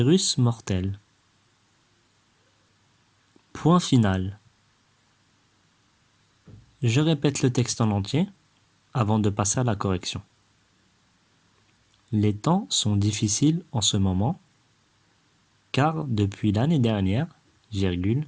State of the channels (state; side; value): identical; both; correlation 1.00